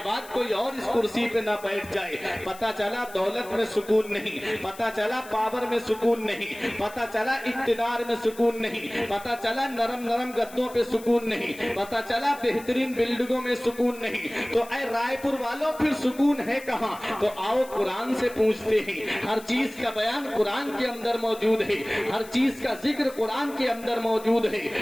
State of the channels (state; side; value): noise; left; hiss, 19 dB below the sound